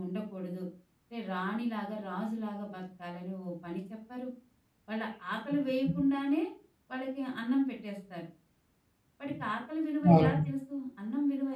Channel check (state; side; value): identical; both; correlation 1.00